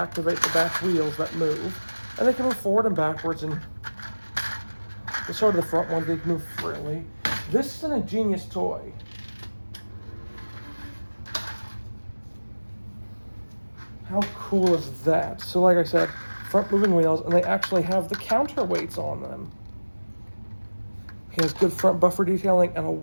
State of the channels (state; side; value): inverted; both; correlation -1.00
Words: the back wheels that move, and they can move forward and backwards, and the sort of the front one, they can move freely. This is an ingenious toy. How cool is that? So like I said, front moving wheels, and they actually have the counterweights on them. He has good front buffer detailing and a